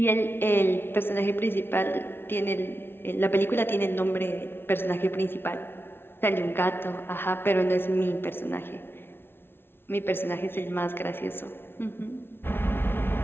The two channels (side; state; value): right; late; 0.11 ms